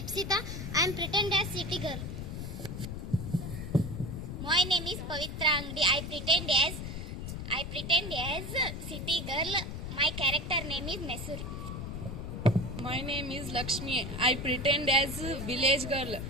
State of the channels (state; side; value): noise; left; rumble, 6 dB below the sound